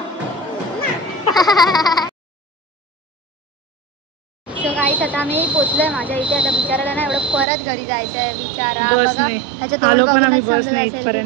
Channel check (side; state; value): left; drops out; at 7.5 s